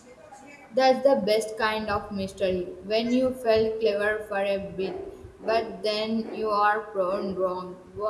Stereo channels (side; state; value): both; identical; correlation 1.00